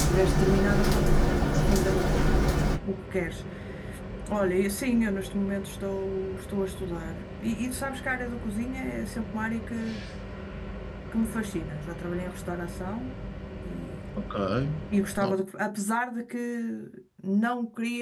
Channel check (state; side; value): identical; both; correlation 1.00